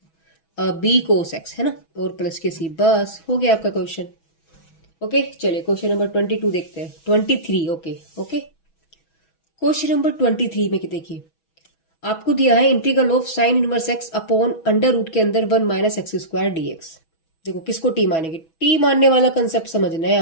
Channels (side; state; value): right; late; 6.1 ms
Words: B cos X, है ना, और प्लस के सी, बस हो गया आपका क्वेश्चन। ओके चलिए क्वेश्चन नंबर 22 देखते हैं, 23। ओके क्वेश्चन नंबर 23 में देखिए, आपको दिया है integral of sine inverse x upon under root के अंदर 1 माइनस एक्स स्क्वायर डीएक्स। देखो किसको टी मानेंगे, टी मानने वाला कंसेप्ट समझना है